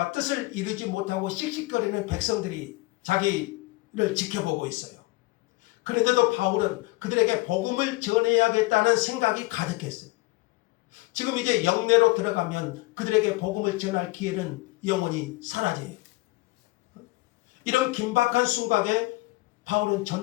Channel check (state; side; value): quieter; right; 22.0 dB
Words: 뜻을 이루지 못하고 씩씩거리는 백성들이 자기를 지켜보고 있어요. 그런데도 바울은 그들에게 복음을 전해야겠다는 생각이 가득했어요. 지금 이제 영내로 들어가면 그들에게 복음을 전할 기회는 영원히 사라져요. 이런 긴박한 순간에 바울은